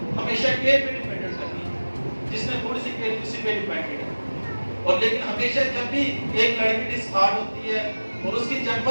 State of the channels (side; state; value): both; inverted; correlation -1.00